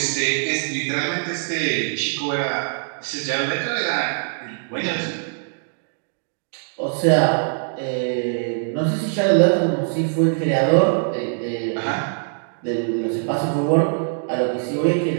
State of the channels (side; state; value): left; silent; digital silence